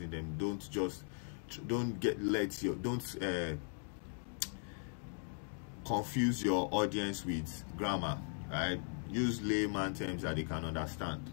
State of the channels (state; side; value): silent; right; 52 dB below the other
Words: them, don't confuse your audience with grammar, right? Use layman terms that they can understand,